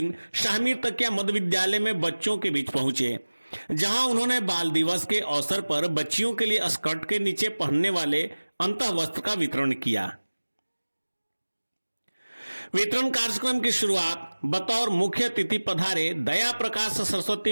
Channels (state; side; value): inverted; both; correlation -1.00